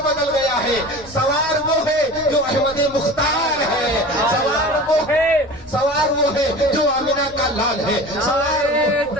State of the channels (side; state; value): left; noise; hum, 26 dB below the sound